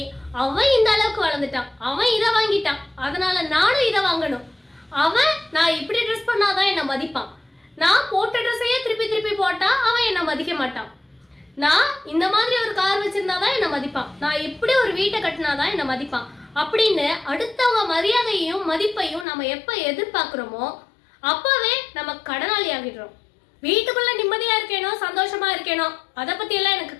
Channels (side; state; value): right; drops out; at 19.2 s